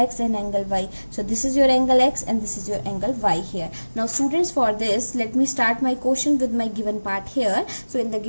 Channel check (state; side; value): inverted; both; correlation -1.00